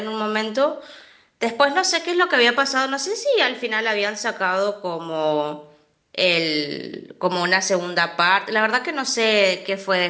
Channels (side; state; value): both; identical; correlation 1.00